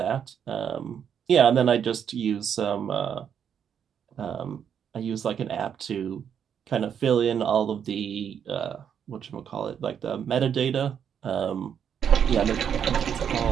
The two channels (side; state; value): left; quieter; 8.2 dB